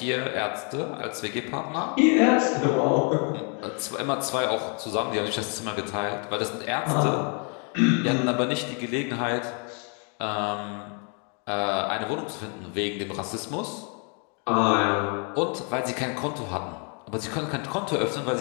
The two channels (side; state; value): right; quieter; 38.1 dB